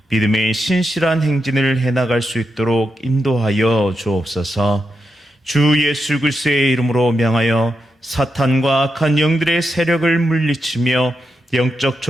믿음의 신실한 행진을 해나갈 수 있도록 인도하여 주옵소서. 주 예수 그리스도의 이름으로 명하여 사탄과 악한 영들의 세력을 물리치며 영적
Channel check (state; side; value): normal; both; correlation 0.86